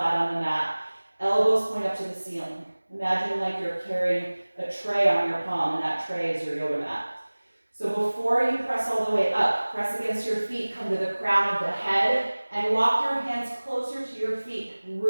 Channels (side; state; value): both; inverted; correlation -1.00